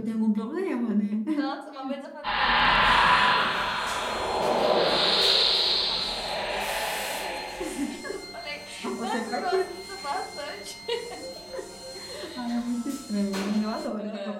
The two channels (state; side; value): identical; both; correlation 1.00